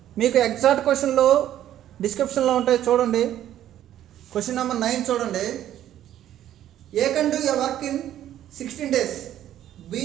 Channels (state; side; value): quieter; left; 11.8 dB